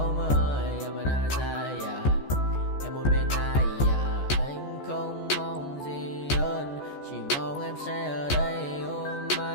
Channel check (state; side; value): late; right; 14 ms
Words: mơ. Em ở nơi xa. Em muốn bên ai. Anh không mong gì hơn. Chỉ mong em sẽ ở đây ôm